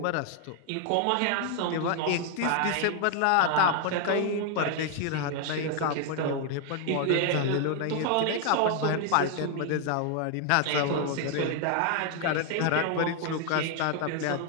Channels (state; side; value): different; both; correlation 0.00